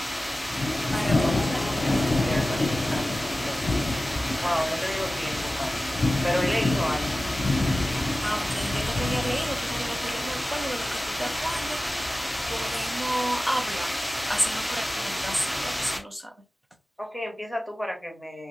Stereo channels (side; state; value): both; normal; correlation 0.96